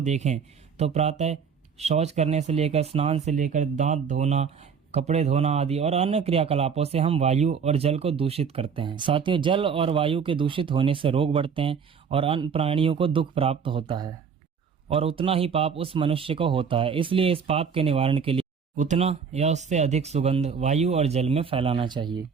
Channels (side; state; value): left; quieter; 6.4 dB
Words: देखें तो प्रातः शौच करने से लेकर स्नान से लेकर दांत धोना, कपड़े धोना आदि और अन्य क्रियाकलापों से हम वायु और जल को दूषित करते हैं। साथियों, जल और वायु के दूषित होने से रोग बढ़ते हैं और अन्य प्राणियों को दुख प्राप्त होता है और उतना ही पाप उस मनुष्य को होता है। इसलिए इस पाप के निवारण के लिए उतना या उससे अधिक सुगंध वायु और जल में फैलाना चाहिए।